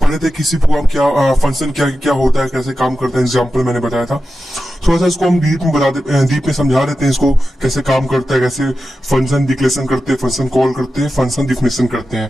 पढ़े थे किसी प्रोग्राम क्या फंक्शन क्या क्या होता है, कैसे काम करता है। एग्जाम्पल मैंने बताया था। थोड़ा सा इसको हम डीप में समझा देते हैं इसको कैसे काम करता है, कैसे फंक्शन डिक्लेरेशन करते हैं, फंक्शन कॉल करते हैं, फंक्शन डिफिनेशन करते हैं।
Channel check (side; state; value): both; normal; correlation 0.92